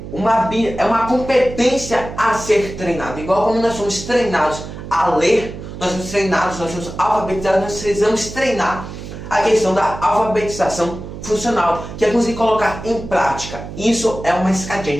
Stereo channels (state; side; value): noise; right; hum, 11 dB below the sound